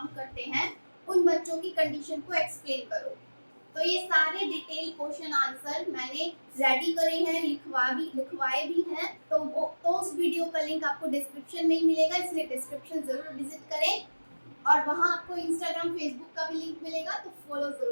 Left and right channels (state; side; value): inverted; both; correlation -1.00